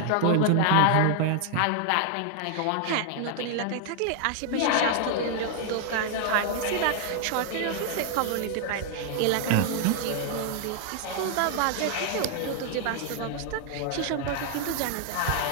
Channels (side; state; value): both; different; correlation 0.00